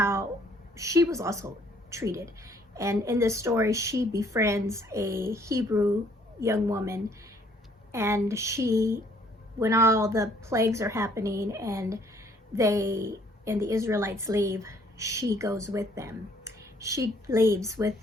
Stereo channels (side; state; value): both; normal; correlation 0.63